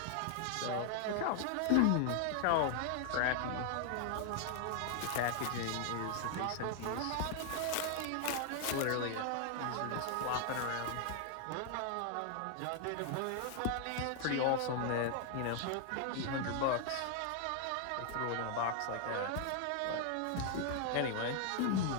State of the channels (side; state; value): both; different; correlation 0.00